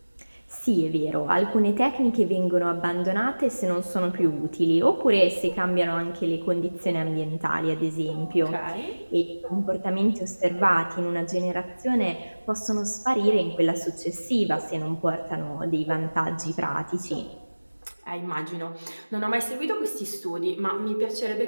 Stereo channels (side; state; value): both; inverted; correlation -1.00